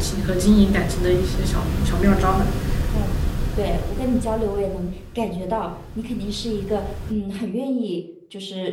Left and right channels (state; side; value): identical; both; correlation 1.00